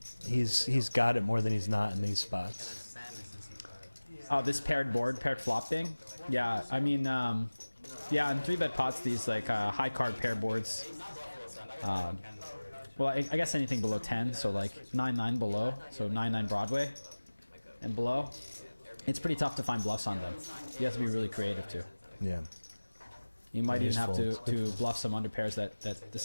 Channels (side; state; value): both; inverted; correlation -1.00